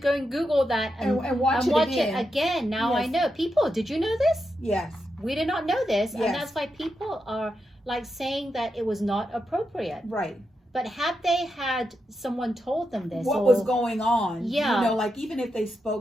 and Google that and watch it again. Now I know. People, did you know this? Yes. We did not know this. Yes. And that's why people are like saying that it was not appropriate. Right. But had they had someone told them this, what was going on? Yeah. You know, like even if they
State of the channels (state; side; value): normal; both; correlation 0.86